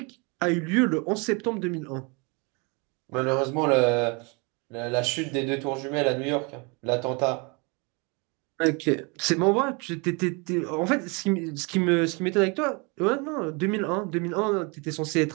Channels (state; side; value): quieter; left; 30.5 dB